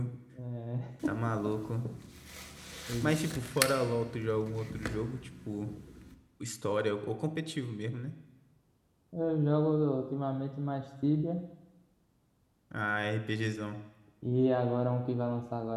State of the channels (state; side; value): identical; both; correlation 1.00